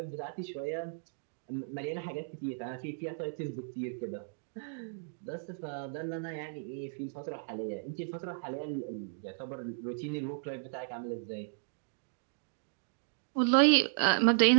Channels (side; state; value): left; silent; digital silence